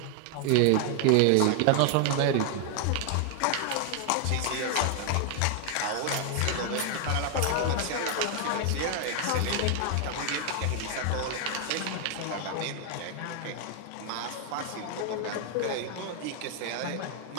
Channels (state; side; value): different; both; correlation 0.00